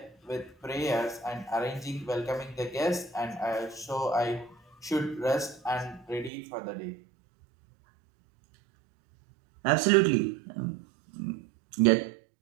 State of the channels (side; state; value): left; drops out; at 6.3 s